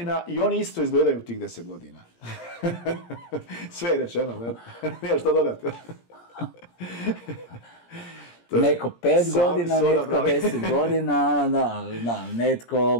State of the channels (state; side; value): late; right; 17 ms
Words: i oni isto izgledaju u tih 10 godina. Sve je rečeno, ne? Nije što dodati. Neko 5 godina, netko 10 godina, da, netko